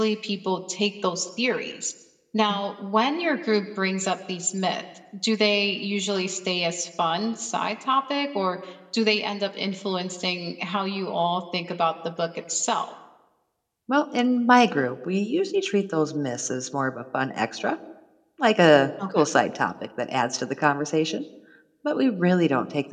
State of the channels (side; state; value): both; identical; correlation 1.00